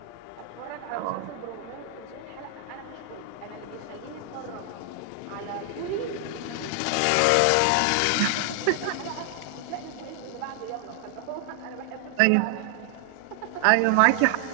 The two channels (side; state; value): both; different; correlation 0.00